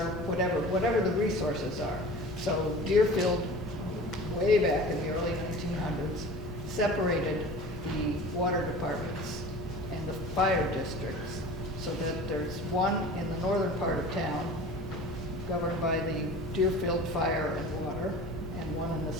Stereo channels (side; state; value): both; normal; correlation 0.39